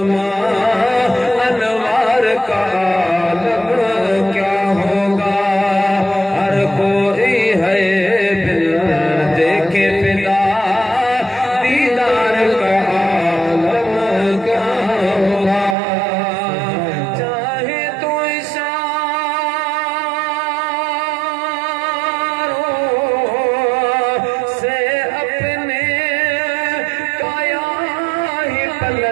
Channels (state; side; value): drops out; left; at 15.8 s